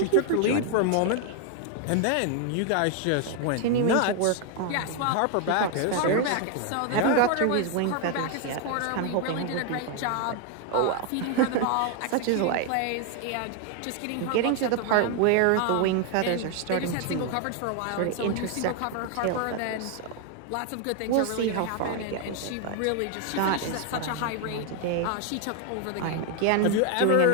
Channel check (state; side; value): different; both; correlation 0.01